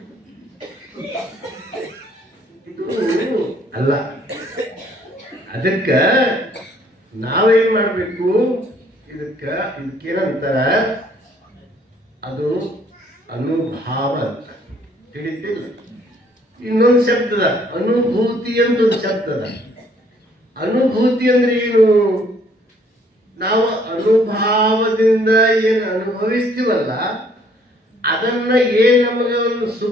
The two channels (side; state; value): both; normal; correlation 0.62